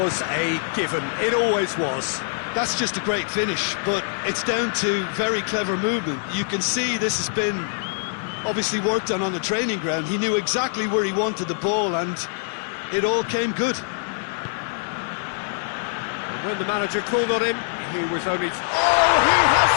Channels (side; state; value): right; silent; digital silence